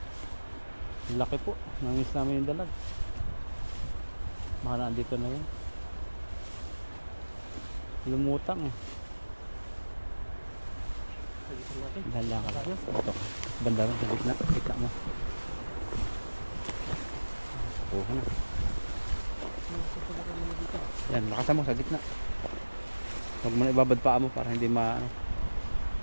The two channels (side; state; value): both; inverted; correlation -1.00